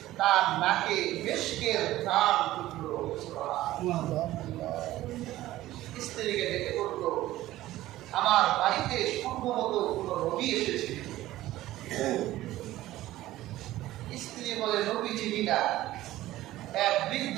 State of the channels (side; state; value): left; quieter; 15.6 dB